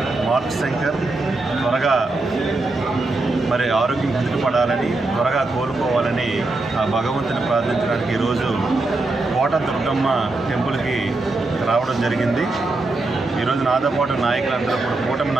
మార్క్ శంకర్ త్వరగా ఆరోగ్యం కుదుటపడాలని, త్వరగా కోలుకోవాలని ఆ భగవంతుని ప్రార్థించడానికి ఈరోజు కోట దుర్గమ్మ టెంపుల్కి రావడం జరిగింది. ఈరోజు నాతో పాటు నాయకులందరూ కూడా, కూటమి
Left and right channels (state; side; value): quieter; left; 3.1 dB